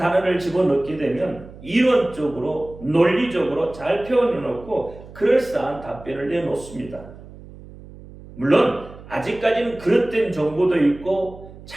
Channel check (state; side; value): noise; right; hum, 18 dB below the sound